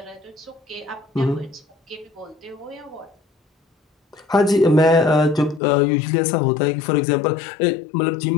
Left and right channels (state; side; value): drops out; right; at 5.6 s